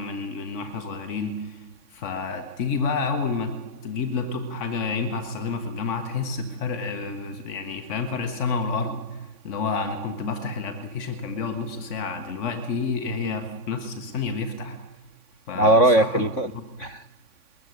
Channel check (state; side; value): late; right; 3.6 ms